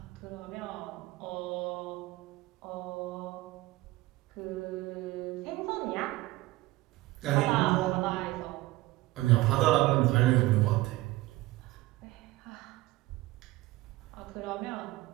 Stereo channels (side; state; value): left; quieter; 18.8 dB